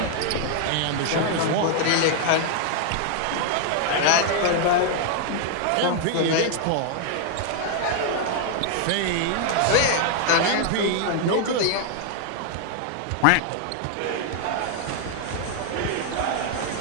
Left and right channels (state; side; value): different; both; correlation 0.00